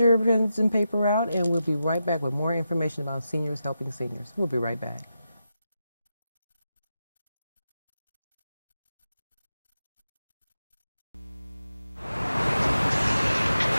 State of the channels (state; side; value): inverted; both; correlation -0.89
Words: pens and paper out, and we'll be right back with more information about Seniors Helping Seniors. We'll be right back.